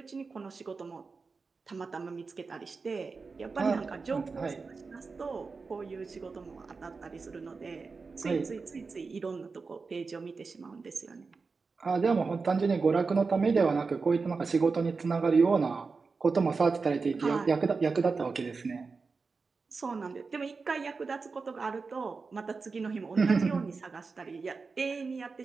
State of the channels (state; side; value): quieter; left; 4.5 dB